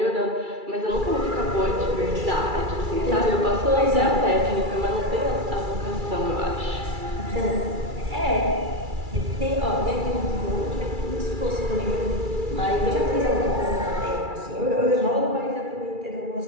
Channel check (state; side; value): late; left; 2.3 ms